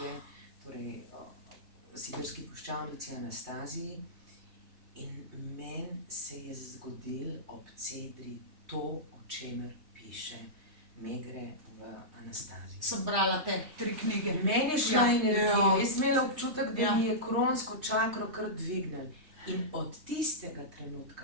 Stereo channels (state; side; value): late; left; 3.2 ms